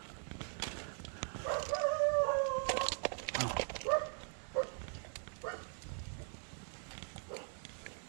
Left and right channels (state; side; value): silent; left; 51 dB below the other